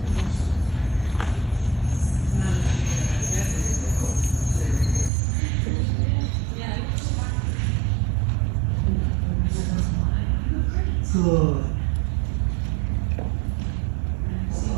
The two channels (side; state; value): left; drops out; at 5.1 s